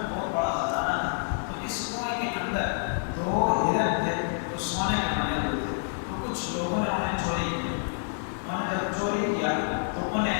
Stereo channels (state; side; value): silent; right; 57 dB below the other